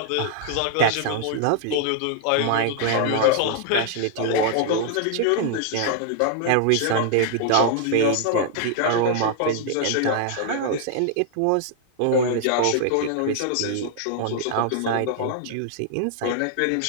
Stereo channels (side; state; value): both; different; correlation 0.00